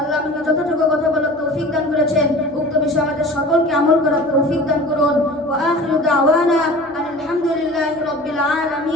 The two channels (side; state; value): both; normal; correlation 0.40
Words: আমাকে যতটুকু কথা বলার তৌফিক দান করেছেন, উক্ত বিষয়ে আমাদের সকলকে আমল করার তৌফিক দান করুন। ওয়া আখিরু দাওয়ানা আলহামদুলিল্লাহি রাব্বিল